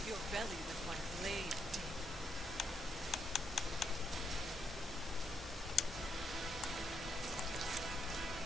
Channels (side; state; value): both; normal; correlation 0.78